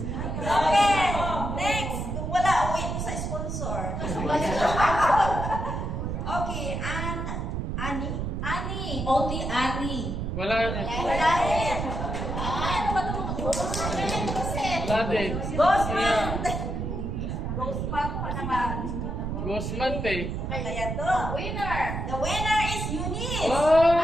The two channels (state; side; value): noise; right; rumble, 3 dB below the sound